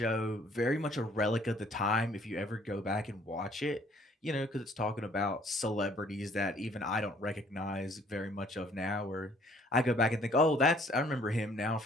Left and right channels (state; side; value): normal; both; correlation 0.60